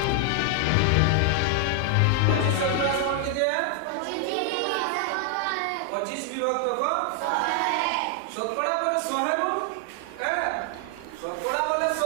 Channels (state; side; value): different; both; correlation 0.00